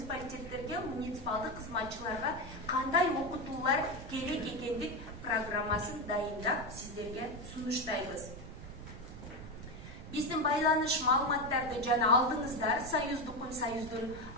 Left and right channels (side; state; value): right; noise; rumble, 13 dB below the sound